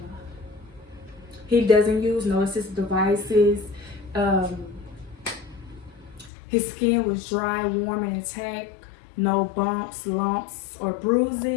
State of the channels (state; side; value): drops out; right; at 6.3 s